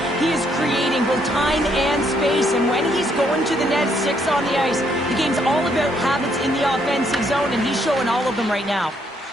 he is creating both time and space. And when he's going to the net, 6 on the ice, the game's all about habits in the offensive zone, and he's showing all of them right now.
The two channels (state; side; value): normal; both; correlation 0.71